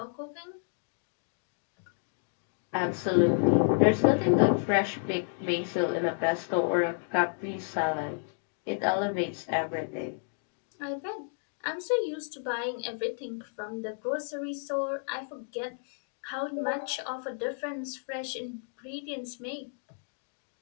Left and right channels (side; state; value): right; silent; 57 dB below the other